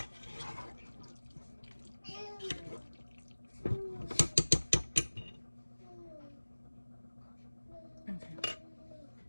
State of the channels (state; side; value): inverted; both; correlation -1.00